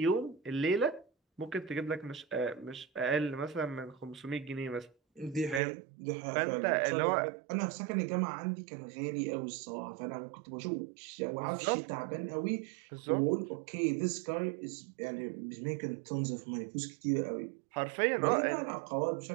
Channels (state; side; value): drops out; left; at 5.6 s